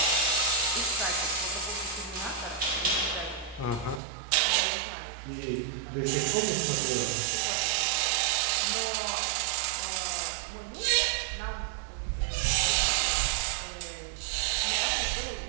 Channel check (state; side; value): drops out; left; at 4.0 s